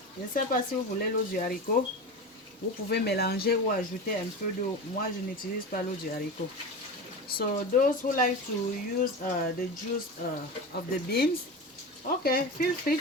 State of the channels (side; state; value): both; normal; correlation 0.26